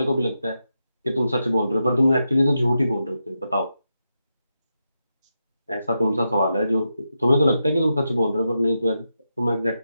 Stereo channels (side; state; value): both; inverted; correlation -0.87